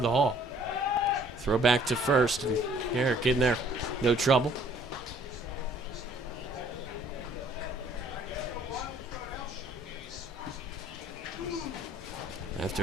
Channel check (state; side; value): normal; both; correlation 0.58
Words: Hall. Throw back to first, and Garrick in there, no trouble.